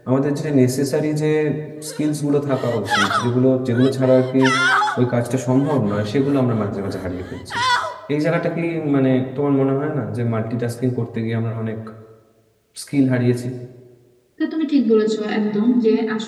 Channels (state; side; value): identical; both; correlation 1.00